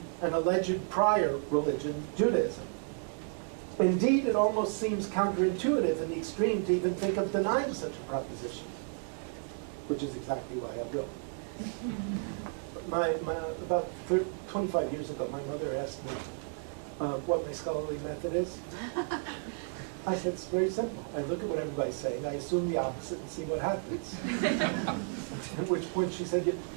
an alleged prior religion, Judaism. Indeed, it almost seems counterintuitive in the extreme to even think of denying such a proposition, which is exactly why I will. About 25 years ago, my mother asked me, what my scholarly method is? I said, it's very simple. I look at what everybody's saying, I assume the opposite and see what happens. At which point she said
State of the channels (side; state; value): left; silent; 56 dB below the other